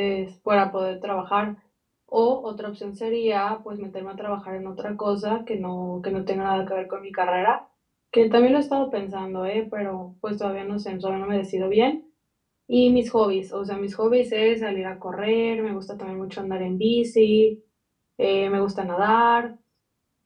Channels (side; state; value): both; identical; correlation 1.00